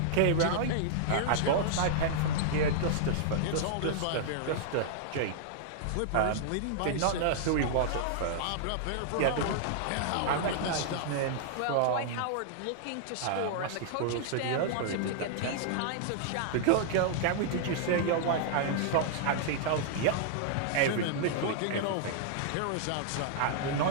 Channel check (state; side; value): different; both; correlation -0.01